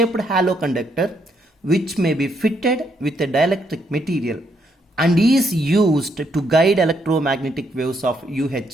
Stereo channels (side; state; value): both; normal; correlation 0.74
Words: hollow conductor which may be fitted with a dielectric material and is used to guide electromagnetic waves of